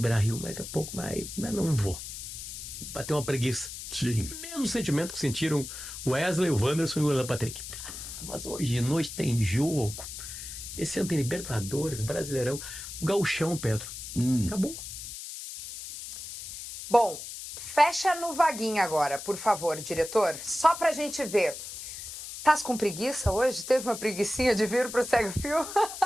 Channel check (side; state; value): left; noise; hiss, 9 dB below the sound